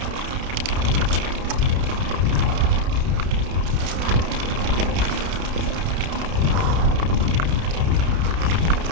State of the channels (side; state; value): left; late; 31 ms